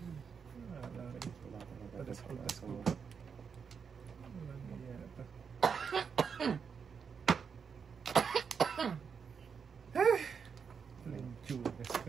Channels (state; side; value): quieter; left; 6.3 dB